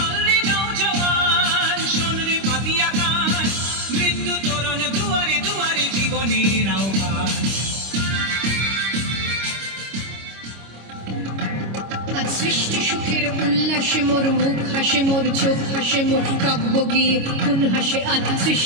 রে নওজওয়ান শোন রে পাতিয়া খান মৃত্যু তরণ দুয়ারে দুয়ারে জীবনের আহ্বান সৃষ্টি সুখের উল্লাসে মোর মুখ হাসে মোর চোখ হাসে মোর কাব্য গিয়ে কোন হাসে আজ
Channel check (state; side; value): late; left; 26 ms